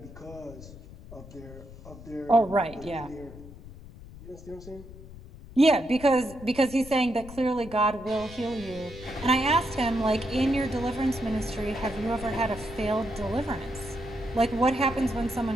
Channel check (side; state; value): left; noise; rumble, 16 dB below the sound